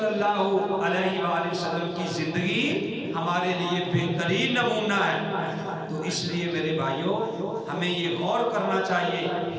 اللہ علیہ وآلہ وسلم کی زندگی ہمارے لیے بہترین نمونہ ہے. تو اس لیے میرے بھائیوں ہمیں یہ غور کرنا چاہیے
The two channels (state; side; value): identical; both; correlation 1.00